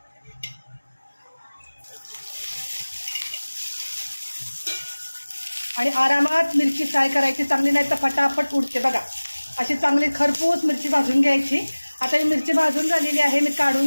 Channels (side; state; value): both; inverted; correlation -1.00